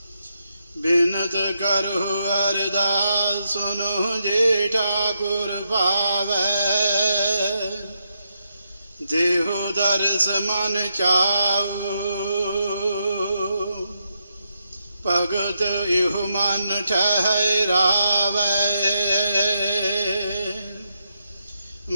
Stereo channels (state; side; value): inverted; both; correlation -0.81